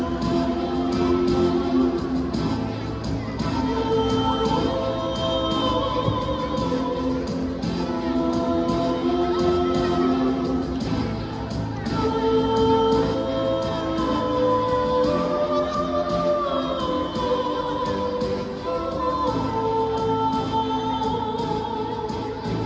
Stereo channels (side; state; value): both; identical; correlation 1.00